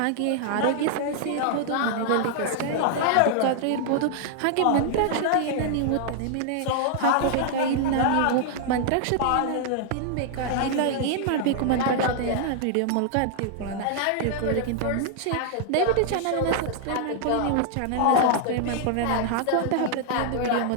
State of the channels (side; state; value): both; different; correlation -0.01